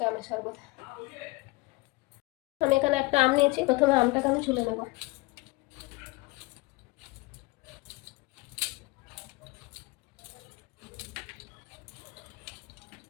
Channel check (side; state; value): right; quieter; 23.2 dB